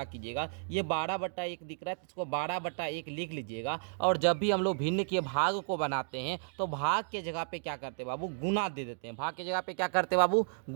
कीजिएगा, ये 12/1 दिख रहा है तो इसको 12/1 लिख लीजिएगा। और जब भी हम लोग भिन्न के भाग को बनाते हैं तो भाग के जगह पे क्या करते हैं बाबू, गुना दे देते हैं। भाग के जगह पे क्या करते हैं बाबू,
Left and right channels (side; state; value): left; silent; digital silence